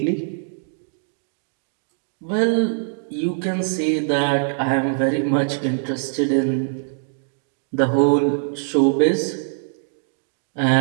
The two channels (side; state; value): left; silent; digital silence